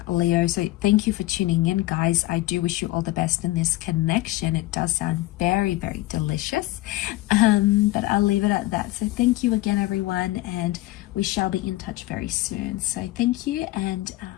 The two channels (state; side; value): quieter; right; 17.9 dB